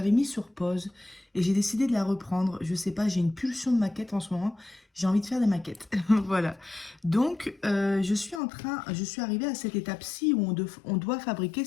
mis sur pause et j'ai décidé de la reprendre. Je sais pas, j'ai une pulsion de maquette en ce moment. J'ai envie de faire des maquettes. Voilà. Donc, je suis arrivée à cette étape-ci où on doit fabriquer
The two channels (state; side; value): drops out; right; at 8.4 s